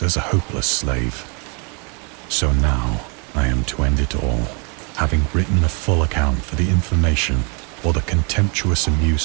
as a hopeless slave. So now I am to end it all, having written a full account for the information or the contemptuous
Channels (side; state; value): left; quieter; 34.5 dB